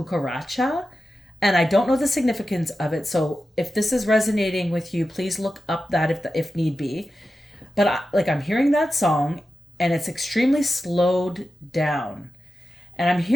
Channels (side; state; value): both; normal; correlation 0.92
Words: and I don't know the significance of it, so if this is resonating with you, please look up that if need be. But I'm hearing that song, and it's extremely slowed down, and I'm